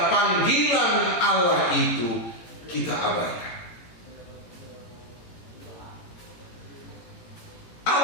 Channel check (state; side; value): late; right; 18 ms